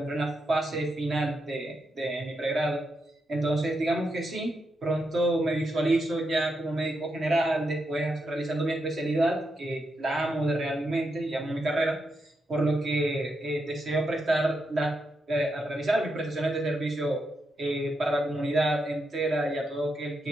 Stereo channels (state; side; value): normal; both; correlation 0.84